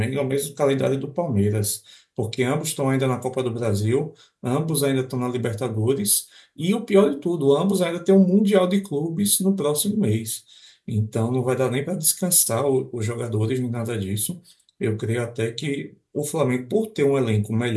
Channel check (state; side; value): identical; both; correlation 1.00